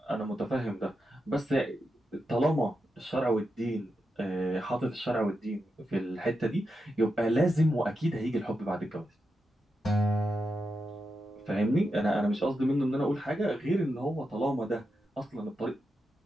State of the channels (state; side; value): normal; both; correlation 0.87